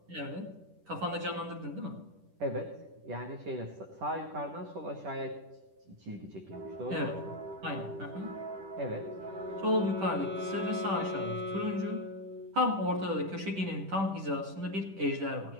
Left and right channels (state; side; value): late; left; 10 ms